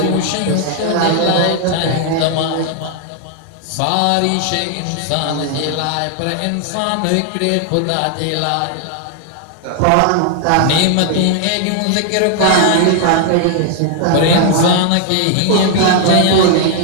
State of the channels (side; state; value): both; different; correlation 0.00